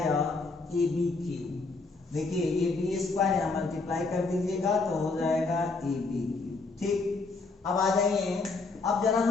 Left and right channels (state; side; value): quieter; right; 3.8 dB